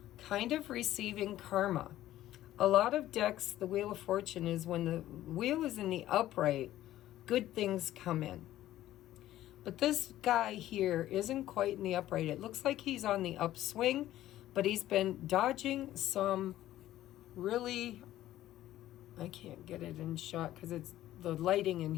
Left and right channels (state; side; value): quieter; right; 13.9 dB